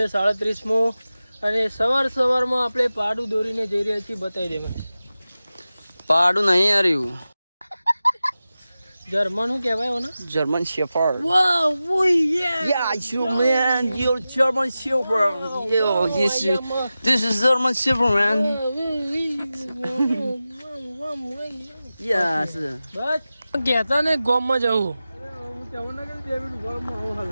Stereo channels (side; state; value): both; inverted; correlation -0.95